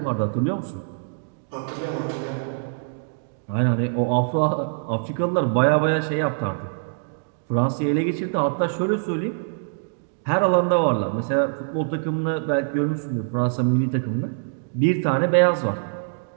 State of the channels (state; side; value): silent; left; digital silence